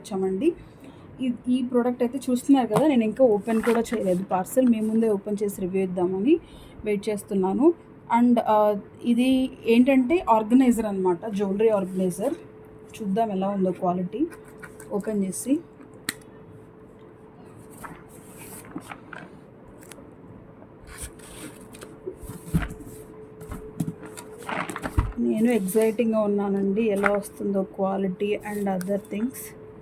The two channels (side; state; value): both; identical; correlation 1.00